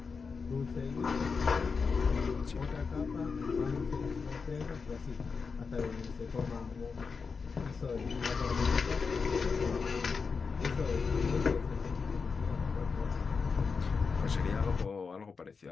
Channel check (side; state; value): right; quieter; 5.1 dB